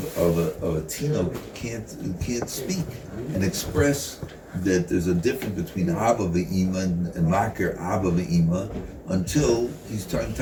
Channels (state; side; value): identical; both; correlation 1.00